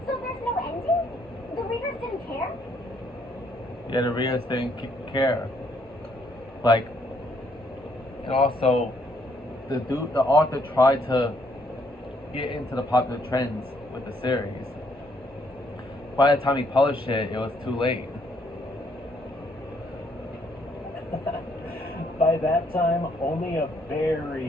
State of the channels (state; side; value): normal; both; correlation 0.69